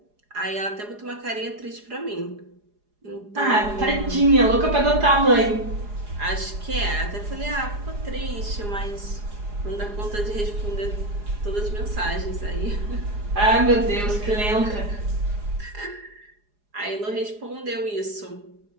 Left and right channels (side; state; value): left; late; 4.8 ms